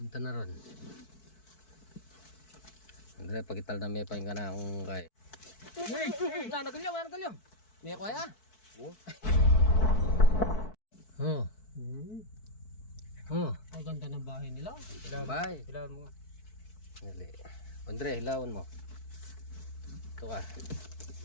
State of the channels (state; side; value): late; right; 4.6 ms